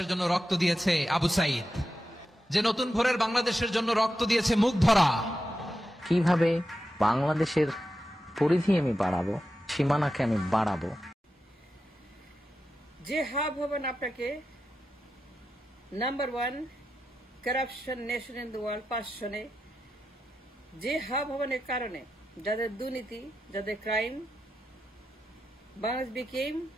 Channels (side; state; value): both; normal; correlation 0.89